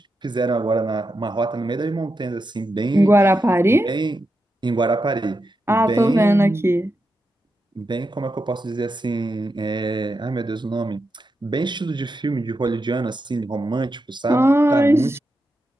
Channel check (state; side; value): normal; both; correlation 0.87